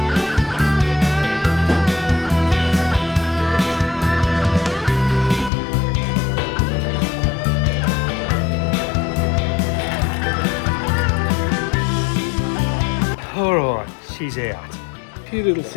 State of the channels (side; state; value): right; drops out; at 5.5 s